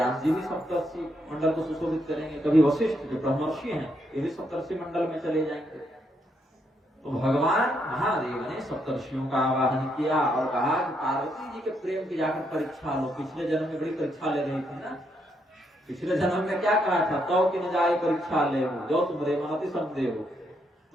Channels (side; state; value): both; normal; correlation 0.76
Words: जी भी सप्तर्षि मंडल को सुशोभित करेंगे, कभी वशिष्ठ जो ब्रह्मर्षि हैं ये भी सप्तर्षि मंडल में चले जाएंगे। तो भगवान महादेव ने सप्तर्षियों का आवाहन किया और कहा कि पार्वती जी के प्रेम की जाकर परीक्षा लो। पिछले जन्म में बड़ी परीक्षा ले रही थी ना। पिछले जन्म में क्या कहा था, तो कि न जाए परीक्षा ले हो, जो तुम रे मनति संदेह हो।